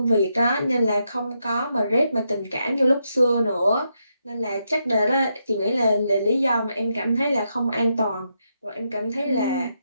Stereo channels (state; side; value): inverted; both; correlation -0.82